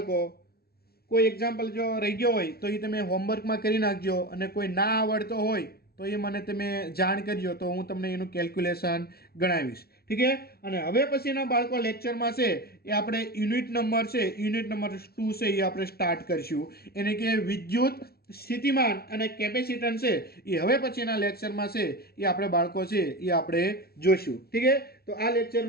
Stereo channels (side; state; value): right; late; 0.45 ms